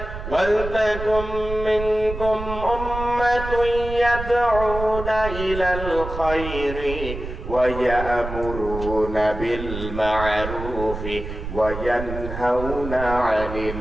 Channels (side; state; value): right; noise; rumble, 8 dB below the sound